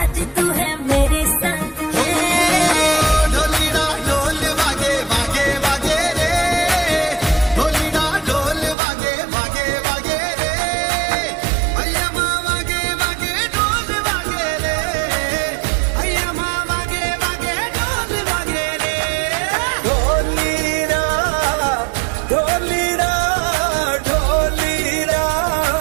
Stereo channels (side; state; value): left; drops out; at 8.8 s